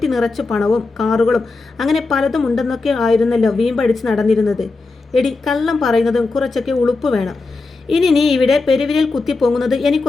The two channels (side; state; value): right; quieter; 3.7 dB